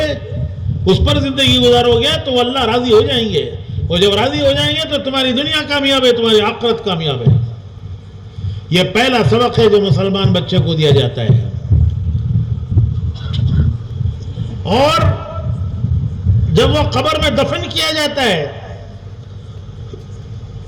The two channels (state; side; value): identical; both; correlation 1.00